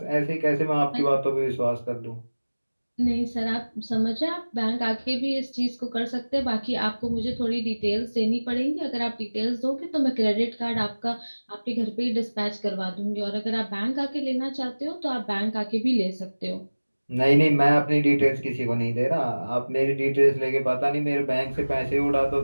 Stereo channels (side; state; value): both; inverted; correlation -1.00